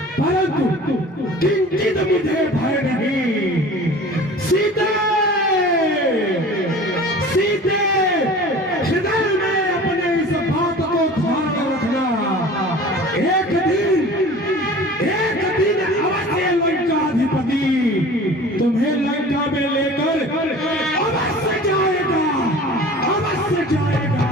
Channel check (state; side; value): normal; both; correlation 0.42